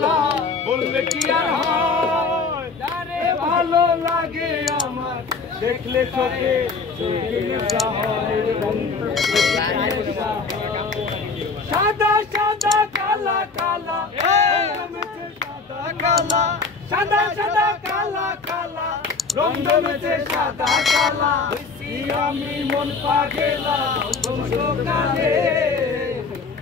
বললে কি আর হয়, তারে ভালো লাগে আমার দেখলে চোখে চোখের নেশা হয়। সাদা সাদা কালা কালা সাদা কালা, সাদা সাদা কালা কালা রং জমেছে সাদা কালা। আমি মন পাগেলা বসন্তকালে,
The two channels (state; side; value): quieter; right; 4.5 dB